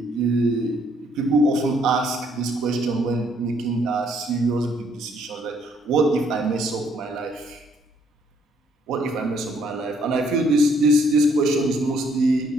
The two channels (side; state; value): both; normal; correlation 0.67